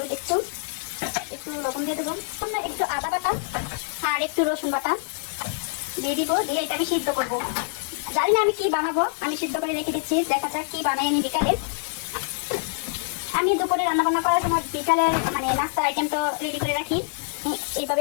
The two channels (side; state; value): right; silent; digital silence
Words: একটু লবণ দিয়ে দেবো, একটু আদা বাটা আর একটু রসুন বাটা দিয়ে দিব। দিয়ে এটা আমি সিদ্ধ করবো। জানি না আমি কি বানাবো, আমি সিদ্ধ করে রেখে দিচ্ছি, দেখা যাক কি বানাই আমি বিকালে। আমি দুপুরে রান্না বান্না করার সময় বিকালে মানে নাস্তার আইটেম তো রেডি করে রাখি,